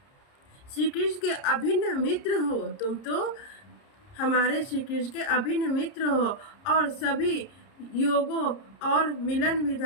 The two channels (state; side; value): late; right; 30 ms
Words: श्री कृष्ण के अभिन्न मित्र हो। तुम तो हमारे श्री कृष्ण के अभिन्न मित्र हो और सभी योगों और मिलन